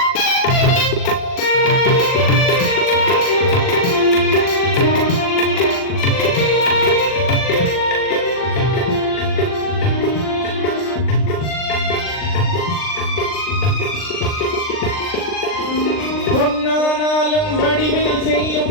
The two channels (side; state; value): right; late; 39 ms